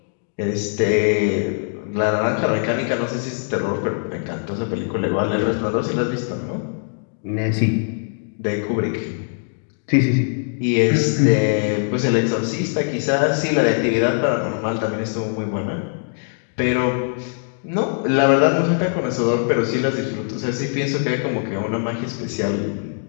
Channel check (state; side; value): silent; right; digital silence